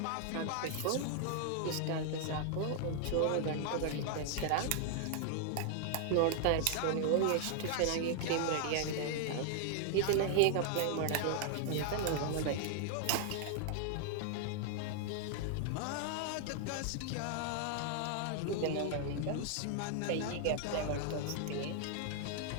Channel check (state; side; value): different; both; correlation 0.00